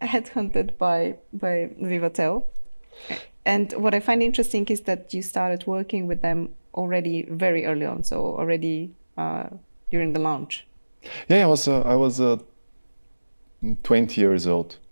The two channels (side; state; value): both; inverted; correlation -1.00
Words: headhunted by Vivatel. And what I find interesting is that you started working with them already very early on, so already during the launch. Yeah, I was 20 years old,